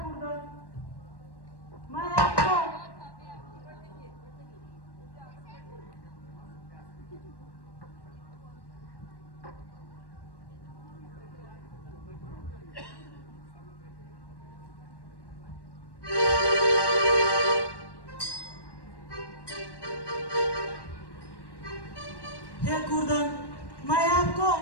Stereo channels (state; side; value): late; right; 1.1 ms